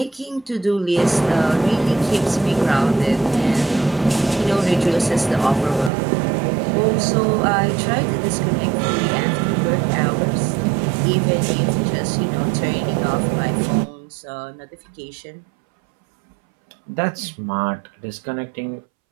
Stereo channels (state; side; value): drops out; left; at 5.9 s